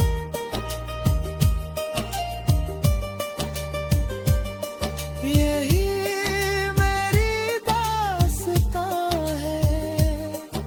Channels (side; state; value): both; identical; correlation 1.00